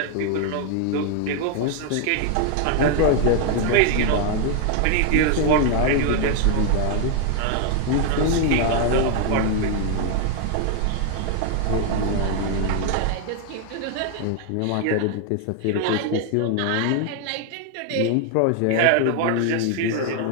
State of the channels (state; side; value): different; both; correlation 0.00